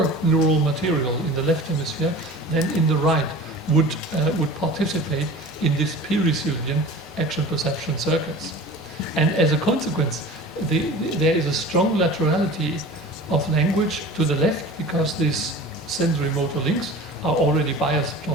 neural material in the left hemisphere than in the right would participate in this pericilian action perception circuits. And as a consequence, there is a strong laterality of language to the left because these sensory motor links are already biased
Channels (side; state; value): both; normal; correlation 0.39